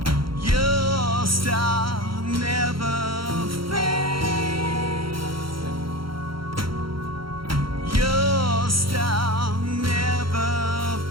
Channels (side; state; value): left; late; 0.74 ms